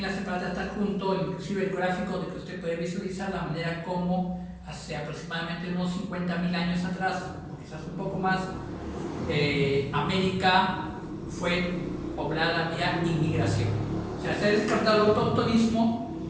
la separata está junto, inclusive el gráfico de que usted puede visualizar la manera como hace aproximadamente unos 50.000 años atrás, o quizás un poco más, América fue poblada vía inmigración. O sea, se ha descartado el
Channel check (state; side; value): identical; both; correlation 1.00